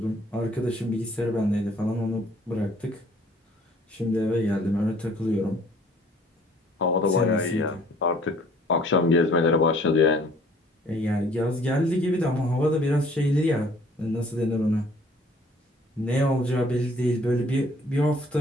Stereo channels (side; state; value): both; normal; correlation 0.57